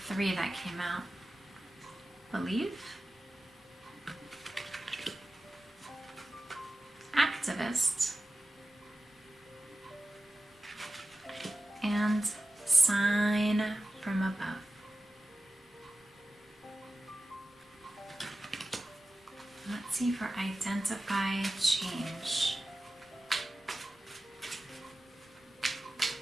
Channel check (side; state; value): both; normal; correlation 0.95